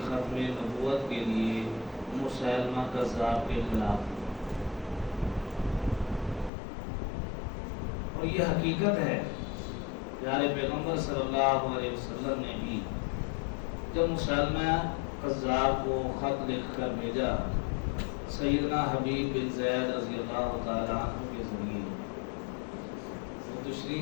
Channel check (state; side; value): drops out; right; at 6.5 s